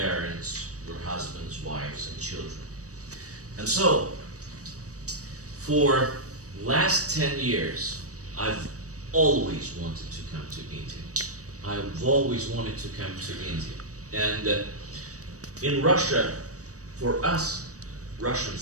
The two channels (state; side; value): late; left; 0.66 ms